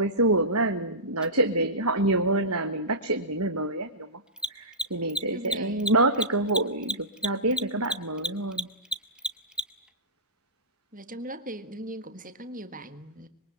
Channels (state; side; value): normal; both; correlation -0.18